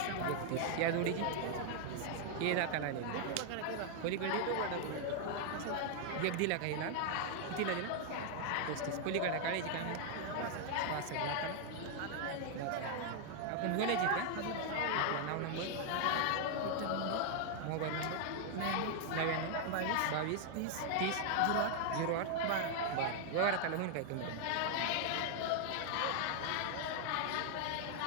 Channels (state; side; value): different; both; correlation 0.00